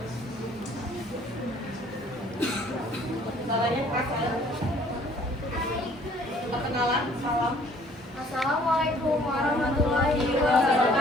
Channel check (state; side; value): normal; both; correlation 0.57